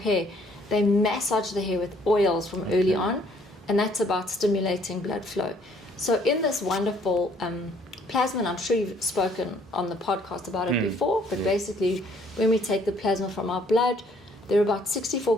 they massage the hair with oils from early on, and that's about stimulating blood flow. So in this wonderful plasma, and I'm sure you've spoken on the podcast about it before, but basically when we take the plasma from our blood, there are about 64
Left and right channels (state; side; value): normal; both; correlation 0.63